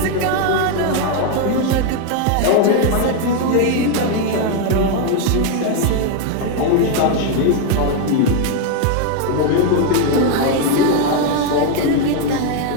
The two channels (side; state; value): both; different; correlation 0.01